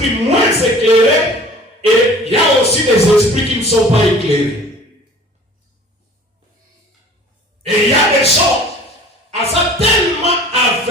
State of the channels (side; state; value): both; normal; correlation 0.46